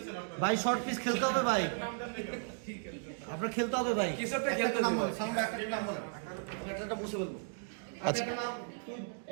ভাই শর্ট পিচ খেলতে হবে ভাই, আপনার খেলতে হবে ভাই। কিছু একটা খেলতে নাম হবে। বল, সামনে একটা নাম বল, একটা মুছে বলবো। আচ্ছা। একটা নাম তুই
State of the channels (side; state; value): left; silent; 54 dB below the other